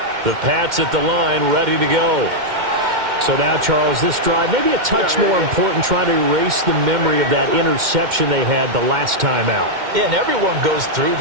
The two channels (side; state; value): left; late; 2.1 ms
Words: The Pats at the line, ready to go. So now, Charles, this drive maybe a touch more important, trying to erase the memory of that interception they had the last time out. Yeah, and everyone goes through